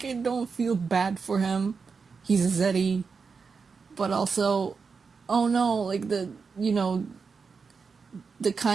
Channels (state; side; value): quieter; left; 5.2 dB